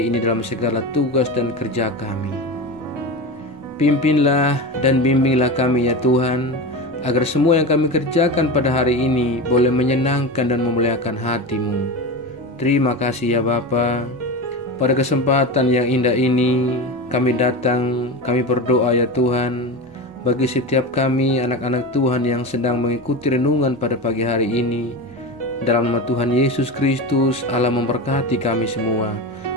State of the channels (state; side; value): normal; both; correlation 0.24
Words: ini dalam segala tugas dan kerja kami. Pimpinlah dan bimbinglah kami ya Tuhan, agar semua yang kami kerjakan pada hari ini boleh menyenangkan dan memuliakan hati-Mu. Terima kasih ya Bapa. Pada kesempatan yang indah ini, kami datang, kami berdoa ya Tuhan, bagi setiap kami anak-anak Tuhan yang sedang mengikuti renungan pada pagi hari ini. Dalam nama Tuhan Yesus Kristus, Allah memberkati kami semua.